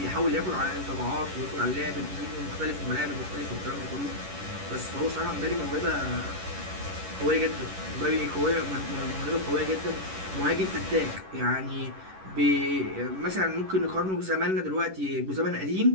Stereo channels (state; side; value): late; left; 11 ms